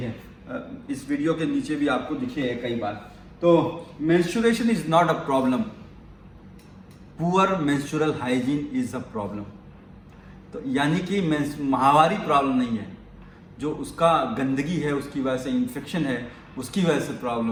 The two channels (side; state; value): both; identical; correlation 1.00